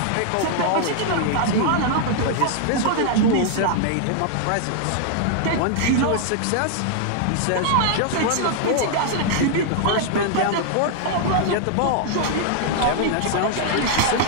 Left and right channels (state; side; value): different; both; correlation 0.00